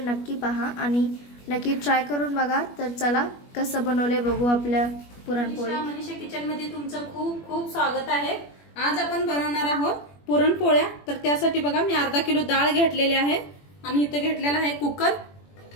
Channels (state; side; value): late; right; 21 ms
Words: नक्की पहा आणि नक्की ट्राय करून बघा। तर चला कसं बनवले बघू आपल्या पुरणपोळी। मनीषा किचन मध्ये तुमचं खूप खूप स्वागत आहे। आज आपण बनवणार आहोत पुरणपोळ्या। तर त्यासाठी बघा मी अर्धा किलो डाळ घेतलेली आहे आणि इथे घेतलेला आहे कुकर।